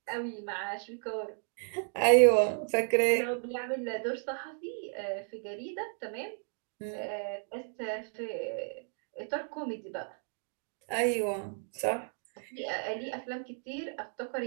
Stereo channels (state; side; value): silent; left; 56 dB below the other